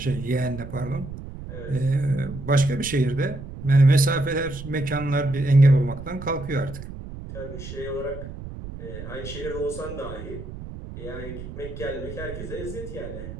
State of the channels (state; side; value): noise; right; rumble, 11 dB below the sound